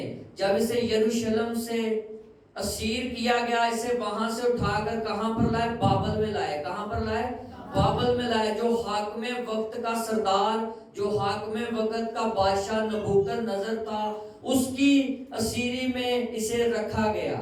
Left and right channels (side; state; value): both; identical; correlation 1.00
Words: جب اسے یروشلم سے اسیر کیا گیا، اسے وہاں سے اٹھا کر کہاں پر لائے؟ بابل میں لائے۔ کہاں پر لائے؟ بابل میں لائے۔ جو حاکم وقت کا سردار، جو حاکم وقت کا بادشاہ نبوکد نظر تھا، اس کی اسیری میں اسے رکھا